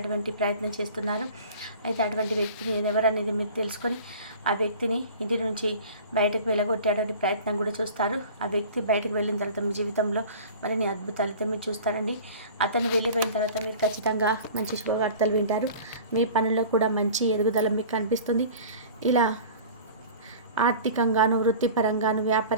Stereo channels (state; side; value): inverted; both; correlation -0.41